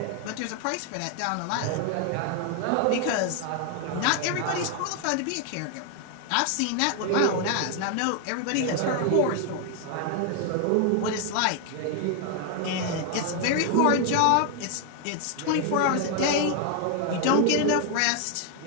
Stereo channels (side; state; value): both; different; correlation 0.00